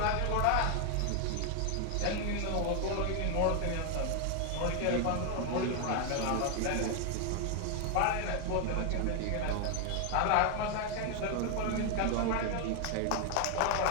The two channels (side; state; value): both; different; correlation 0.00